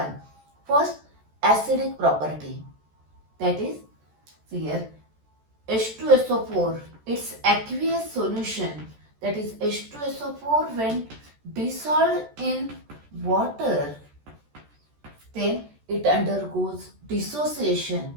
First, acidic property, that is here H2SO4, its aqueous solution, that is H2SO4 when dissolved in water, then it undergoes dissociation,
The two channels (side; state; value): left; late; 14 ms